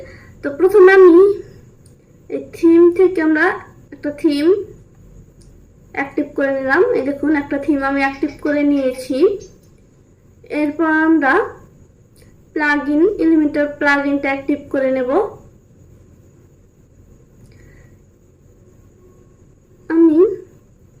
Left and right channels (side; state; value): both; identical; correlation 1.00